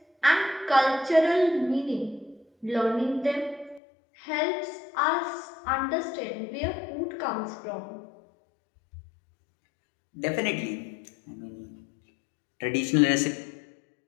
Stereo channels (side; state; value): right; drops out; at 3.8 s